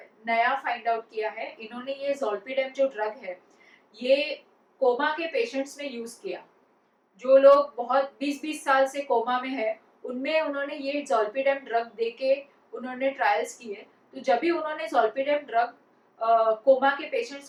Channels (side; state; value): both; identical; correlation 1.00